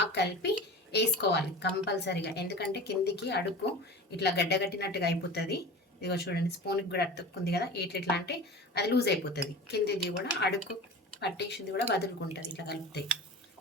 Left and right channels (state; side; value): normal; both; correlation 0.35